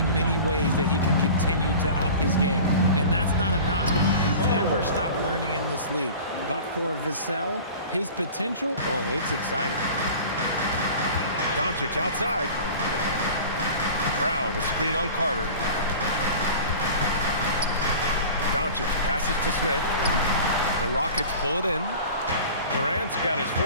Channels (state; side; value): inverted; both; correlation -0.39